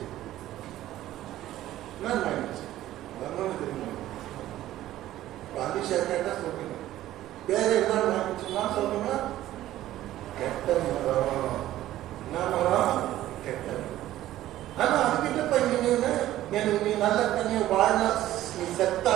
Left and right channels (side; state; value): left; quieter; 14.1 dB